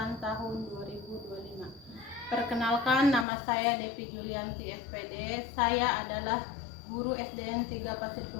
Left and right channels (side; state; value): right; drops out; at 3.2 s